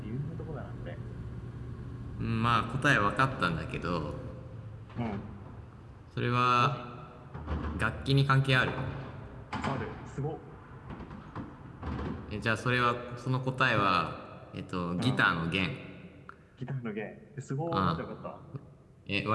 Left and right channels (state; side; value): identical; both; correlation 1.00